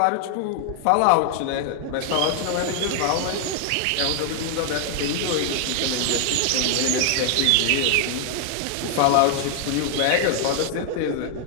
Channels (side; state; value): both; different; correlation 0.00